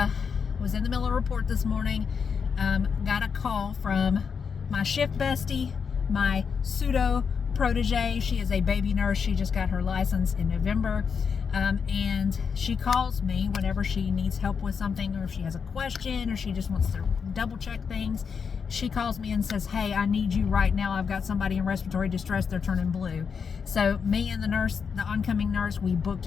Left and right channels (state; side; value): quieter; right; 6.2 dB